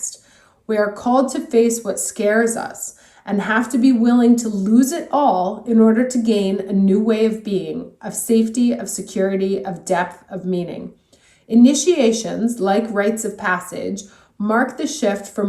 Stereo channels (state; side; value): identical; both; correlation 1.00